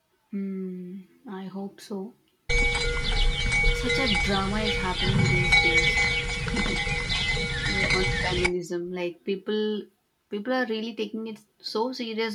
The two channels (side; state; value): both; identical; correlation 1.00